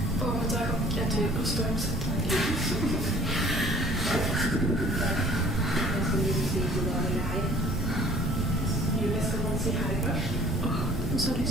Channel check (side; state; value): both; normal; correlation 0.53